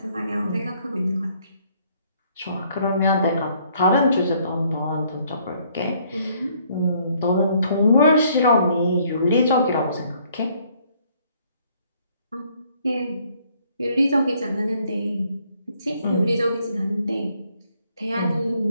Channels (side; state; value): both; inverted; correlation -0.65